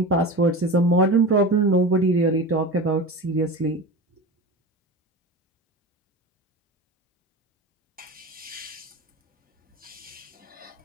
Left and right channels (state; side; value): normal; both; correlation 0.30